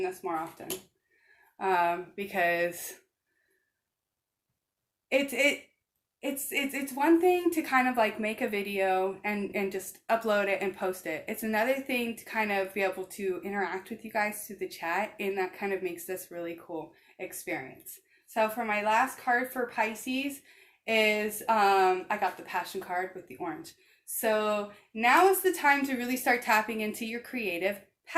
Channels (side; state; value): both; identical; correlation 1.00